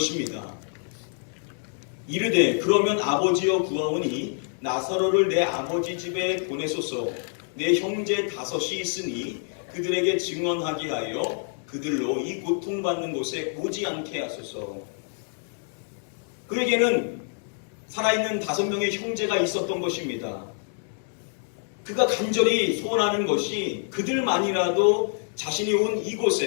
이르되 그러면 아버지여 구하오니 나사로를 내 아버지 집에 보내소서. 내 형제 5이 있으니 그들에게 증언하게 하여 그들로 이 고통받는 곳에 오지 않게 하소서. 그에게는 살아있는 5명의 형제가 있었던 것입니다. 그가 간절히 소원하는 것이 그들만이라도 자신이 온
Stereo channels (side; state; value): right; silent; 60 dB below the other